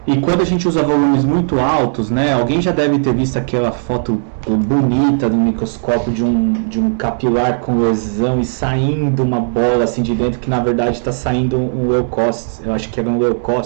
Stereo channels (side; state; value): left; silent; 68 dB below the other